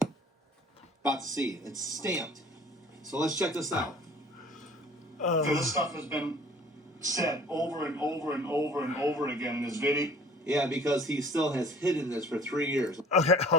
About to see. It's stamped. So let's check this out. So this stuff has been said over and over and over and over again in this video. Yeah, because he still has hidden this for 3 years.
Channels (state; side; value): normal; both; correlation 0.50